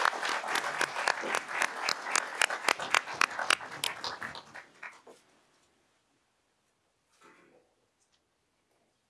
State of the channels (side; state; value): both; identical; correlation 1.00